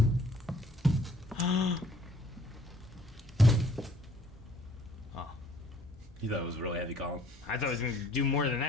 Oh. You thought it was a really heavy column? I thought it was going to do more than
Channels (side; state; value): both; normal; correlation 0.59